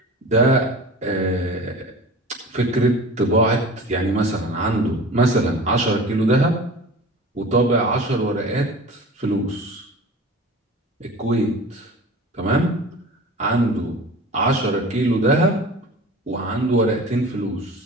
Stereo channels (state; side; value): normal; both; correlation 0.38